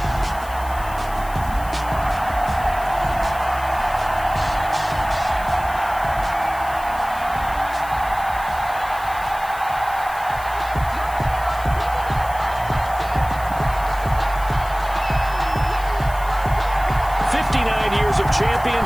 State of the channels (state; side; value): noise; left; hiss, 18 dB below the sound